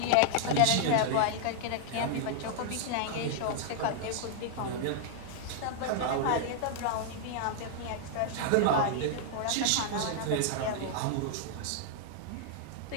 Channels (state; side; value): different; both; correlation -0.01